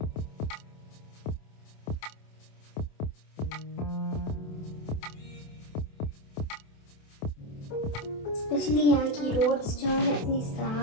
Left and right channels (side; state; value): right; late; 27 ms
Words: स्पेशली यहाँ की रोड्स जो है इतनी